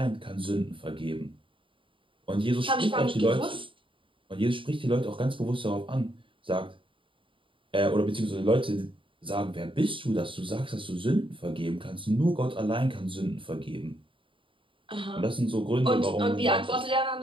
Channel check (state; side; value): late; left; 0.25 ms